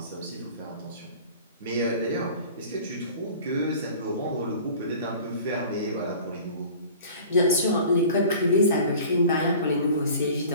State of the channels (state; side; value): inverted; both; correlation -0.43